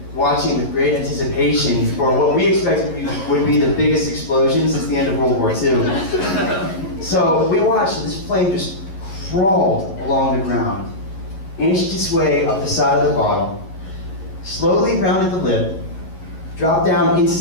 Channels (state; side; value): late; right; 11 ms